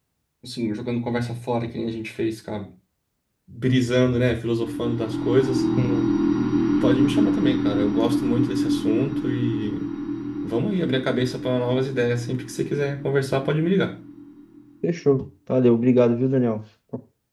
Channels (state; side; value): identical; both; correlation 1.00